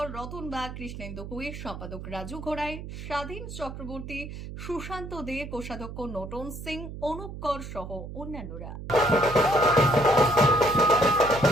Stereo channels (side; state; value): right; noise; hum, 10 dB below the sound